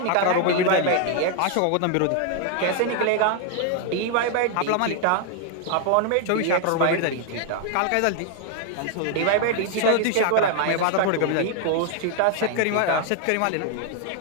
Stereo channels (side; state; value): both; different; correlation 0.00